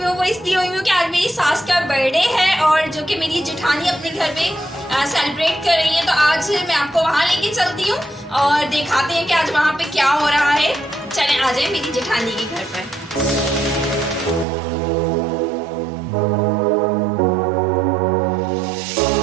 वो इसलिए हुई हूँ कि आज मेरी सास का बर्थडे है और जो कि मेरी जेठानी अपने घर पे सेलिब्रेट कर रही है। तो आज मैं आपको वहाँ लेके चलती हूँ और दिखाते हैं कि आज वहाँ पे क्या हो रहा है। चलें आ जाए मेरी जेठानी के घर पर।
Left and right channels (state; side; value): drops out; left; at 14.5 s